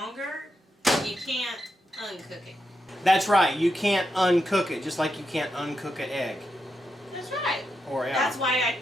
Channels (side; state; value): both; normal; correlation 0.85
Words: You can't uncook it. That's right. You can't uncook it, just like you can't uncook an egg. That's right. Or yeah. That's why I